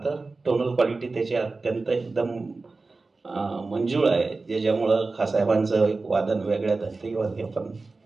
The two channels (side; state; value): left; quieter; 3.7 dB